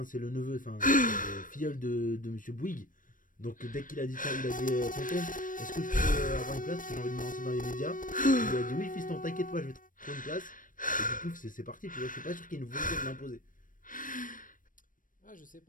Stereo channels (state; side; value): late; right; 0.39 ms